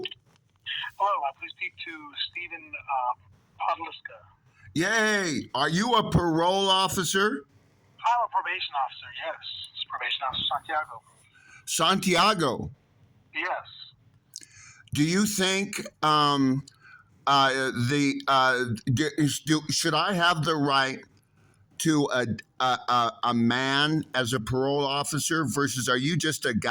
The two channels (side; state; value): both; identical; correlation 1.00